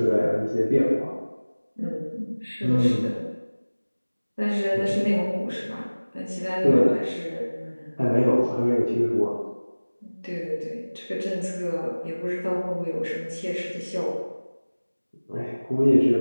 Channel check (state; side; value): inverted; both; correlation -1.00